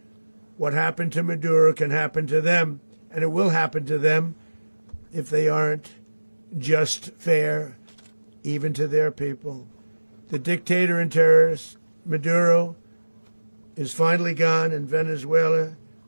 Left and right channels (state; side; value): inverted; both; correlation -1.00